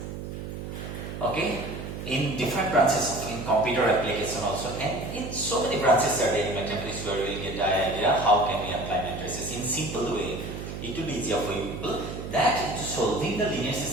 Okay? In different branches of in computer application also, and in so many branches are there in mathematics where we will get the idea how can we apply matrices in simple way. It will be easier for you people that solving the linear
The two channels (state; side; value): noise; right; hum, 8 dB below the sound